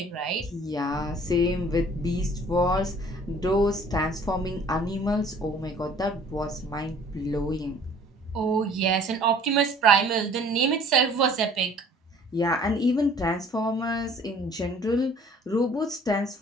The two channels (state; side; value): normal; both; correlation 0.53